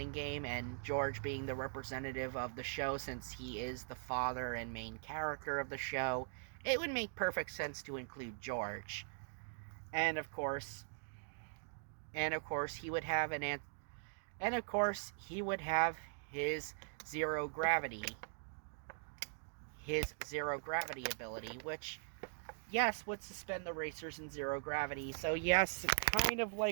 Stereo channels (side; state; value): left; silent; digital silence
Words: game, and George being the representative of the show, since he is the father and main character of the show, it would make perfect sense to include George. And of course, he would have his zero gravity ability, which, yes, would suspend the racers in zero gravity. So yes, kind of